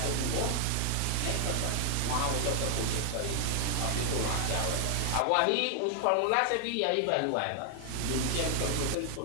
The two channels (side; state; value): both; different; correlation 0.00